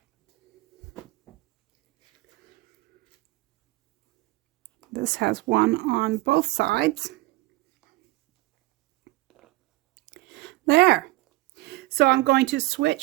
This has one on both sides. There. So I'm going to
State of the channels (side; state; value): left; quieter; 19.9 dB